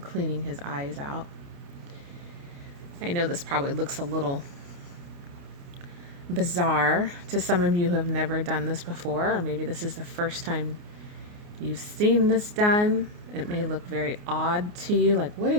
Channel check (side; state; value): left; late; 29 ms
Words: his eyes out. I know this probably looks a little bizarre to some of you who have never done this before, or maybe this is the first time you've seen this done. It may look very odd to you, like, what are